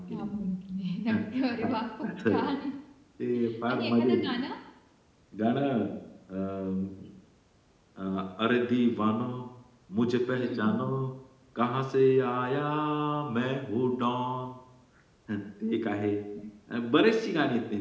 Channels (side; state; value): both; identical; correlation 1.00